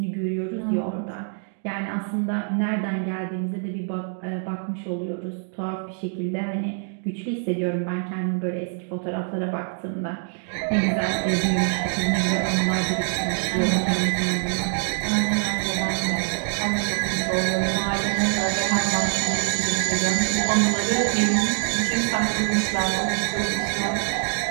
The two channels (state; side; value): silent; left; 59 dB below the other